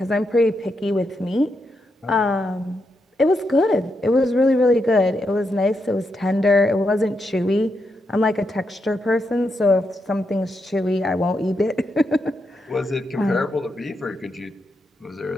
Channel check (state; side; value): normal; both; correlation 0.83